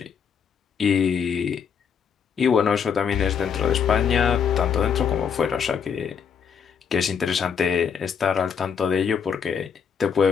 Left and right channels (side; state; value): right; quieter; 7.0 dB